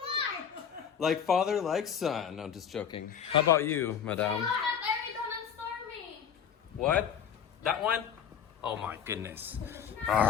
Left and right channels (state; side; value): quieter; right; 8.0 dB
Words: smart. Like father, like son. No, just joking. How about you, madam? Eridon and Stormy. What? That one? Oh my goodness.